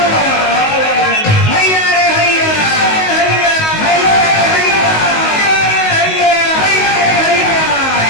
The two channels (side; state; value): right; late; 19 ms